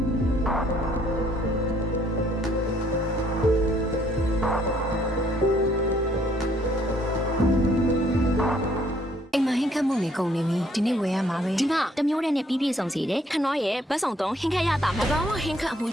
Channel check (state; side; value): normal; both; correlation 0.65